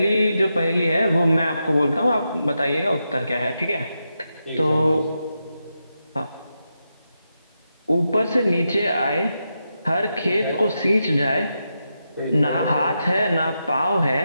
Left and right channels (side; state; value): both; inverted; correlation -0.86